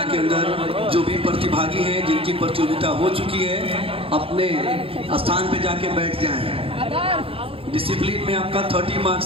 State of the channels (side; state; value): left; late; 0.27 ms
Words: के अंदर जो भी प्रतिभागी हैं जिनकी प्रतियोगिता हो चुकी है अपने स्थान पे जाके बैठ जाएं। डिसिप्लिन में आपका 30